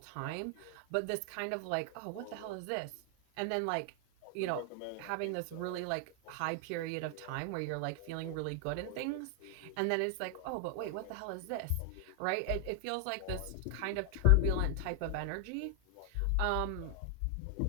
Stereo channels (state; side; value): different; both; correlation 0.00